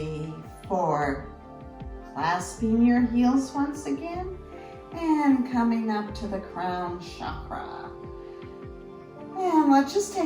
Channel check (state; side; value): identical; both; correlation 1.00